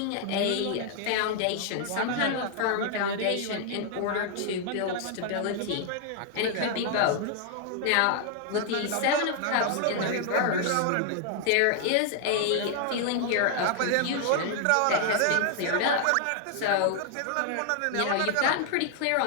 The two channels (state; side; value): different; both; correlation 0.00